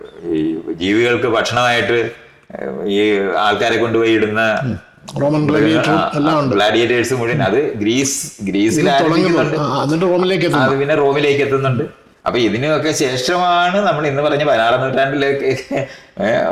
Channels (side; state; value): both; identical; correlation 1.00